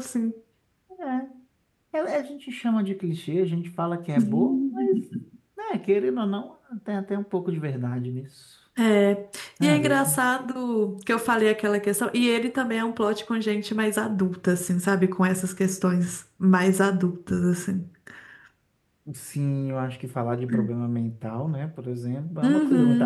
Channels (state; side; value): identical; both; correlation 1.00